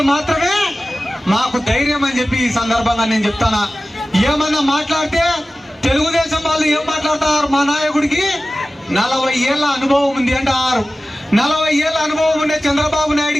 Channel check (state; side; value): normal; both; correlation 0.96